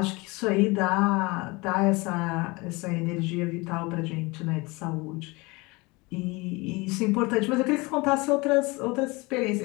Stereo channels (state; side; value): quieter; right; 24.9 dB